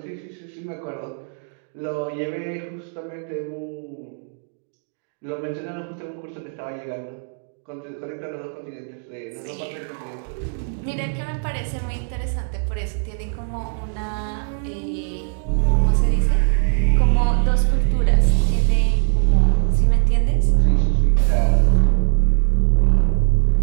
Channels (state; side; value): silent; left; digital silence